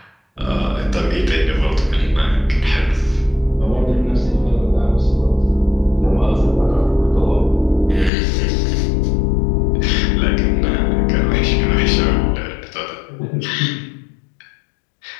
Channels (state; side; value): drops out; right; at 8.1 s